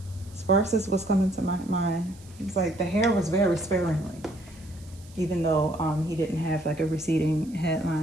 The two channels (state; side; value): noise; right; hiss, 25 dB below the sound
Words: Sparse is what's coming to my mind. It's like the hair was very sparingly, even though he didn't have like a receding